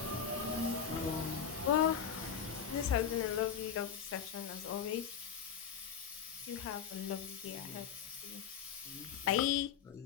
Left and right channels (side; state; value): right; quieter; 7.8 dB